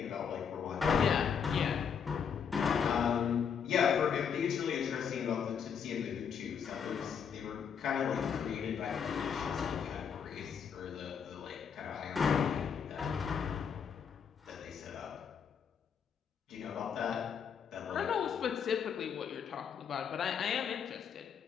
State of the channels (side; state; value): right; quieter; 7.2 dB